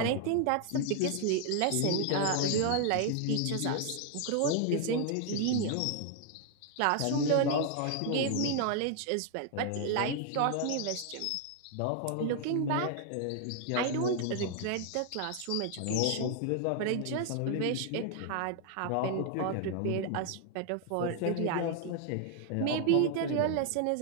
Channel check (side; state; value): both; different; correlation 0.00